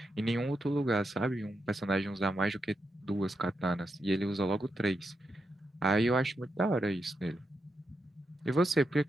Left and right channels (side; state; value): both; normal; correlation 0.85